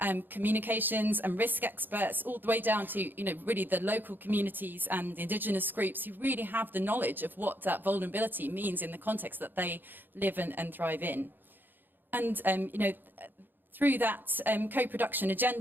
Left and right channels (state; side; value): late; left; 0.092 ms